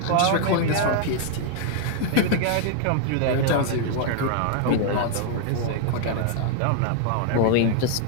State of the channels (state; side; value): different; both; correlation 0.00